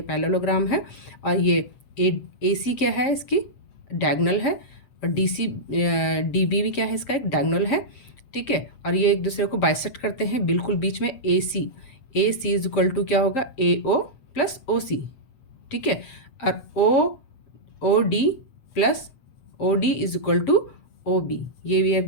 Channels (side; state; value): right; late; 7.5 ms